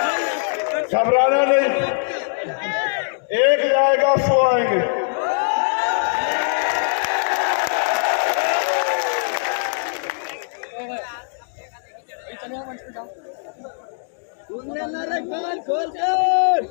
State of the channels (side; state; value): right; silent; digital silence